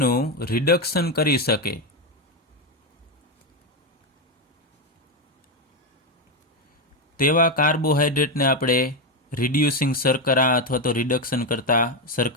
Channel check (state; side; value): normal; both; correlation 0.08